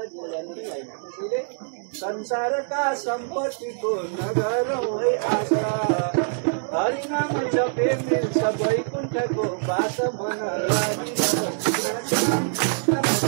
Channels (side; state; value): left; silent; digital silence